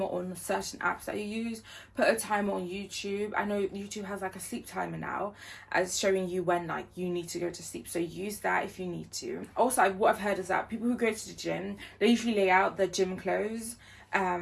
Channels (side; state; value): both; identical; correlation 1.00